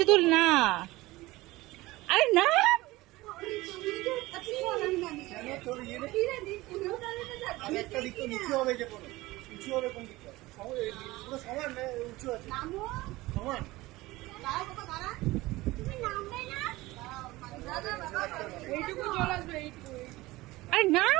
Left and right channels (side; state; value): left; quieter; 19.4 dB